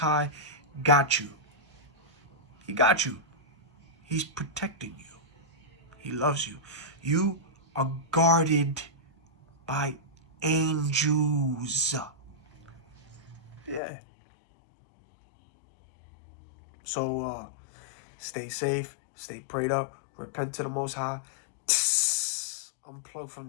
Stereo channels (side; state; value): right; drops out; at 13.8 s